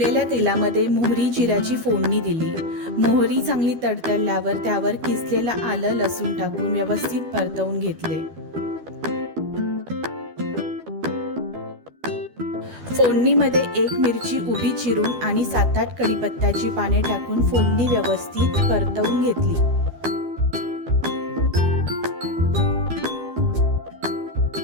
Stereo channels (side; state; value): left; late; 12 ms